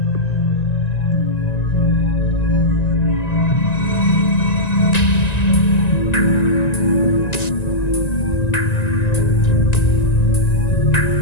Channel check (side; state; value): right; late; 1.9 ms